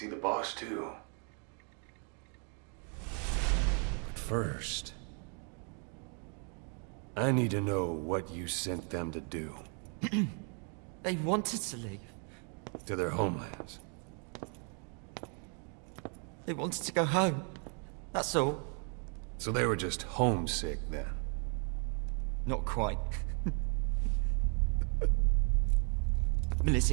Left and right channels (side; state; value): left; quieter; 39.2 dB